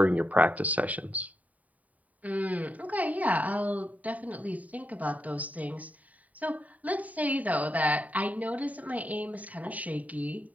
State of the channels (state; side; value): late; left; 0.072 ms